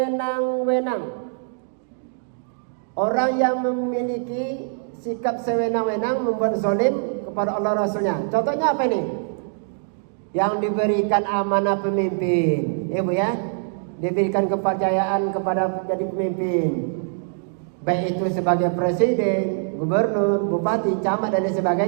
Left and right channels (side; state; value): left; silent; digital silence